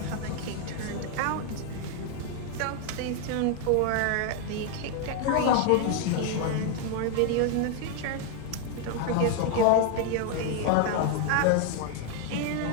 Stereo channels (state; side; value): different; both; correlation 0.01